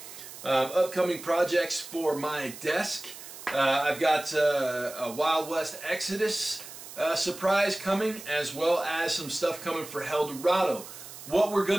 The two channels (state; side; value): noise; right; hiss, 14 dB below the sound